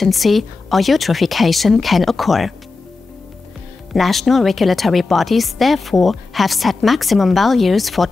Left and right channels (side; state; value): right; quieter; 3.9 dB